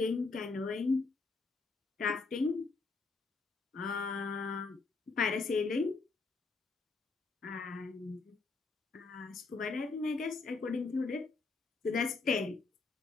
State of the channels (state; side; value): quieter; right; 4.1 dB